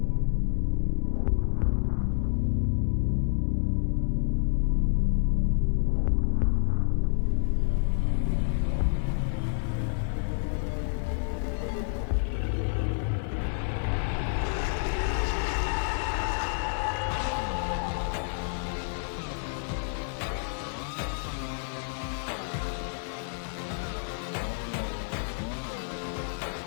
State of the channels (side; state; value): right; silent; 59 dB below the other